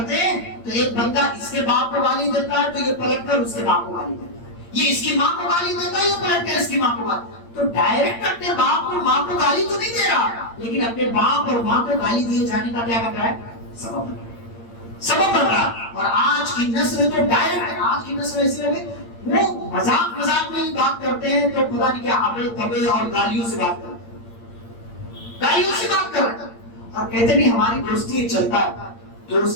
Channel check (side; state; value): right; late; 8.8 ms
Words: ہیں تو ایک بندہ اس کے باپ کو گالی دیتا ہے تو یہ پلٹ کر اس کے باپ کو گالی دیتا ہے، یہ اس کی ماں کو گالی دیتا ہے، یہ پلٹ کر اس کی ماں کو گالی. تو ڈائریکٹ اپنے باپ اور ماں کو گالی تو نہیں دے رہا، لیکن اپنے باپ اور ماں کو گالی دیے جانے کا کیا بن رہا ہے؟ سبب بن رہا. اور آج کی نسل تو ڈائریکٹ، آج کی نسل ایسی ہے وہ مذاق میں ہی بات کرتے ہیں تو خدا نہیں کیا ابے تبے اور گالیوں سے بات کرتے ہیں، گالیوں سے بات کر رہے ہیں. اور کہتے نہیں ہماری دوستی چلتا ہے.